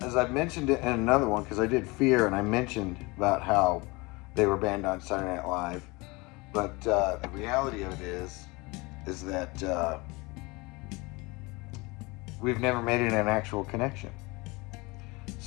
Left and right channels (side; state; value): right; quieter; 24.9 dB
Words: I mentioned it in another one, because I did Fear, and I mentioned about how they were banned on Saturday Night Live. But the reality of it is that we've never made it an actual connection.